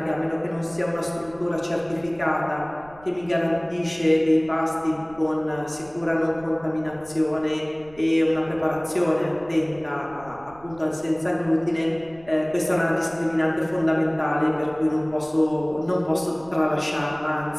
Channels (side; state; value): right; noise; rumble, 24 dB below the sound